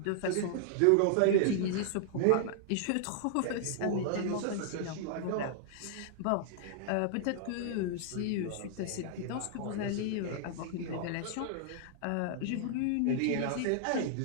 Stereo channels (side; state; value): both; different; correlation -0.01